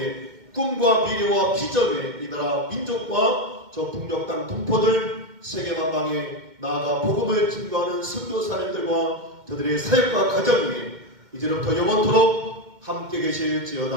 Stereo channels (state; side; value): late; left; 2.1 ms